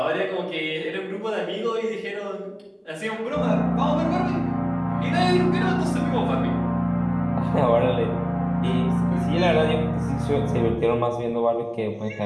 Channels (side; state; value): both; identical; correlation 1.00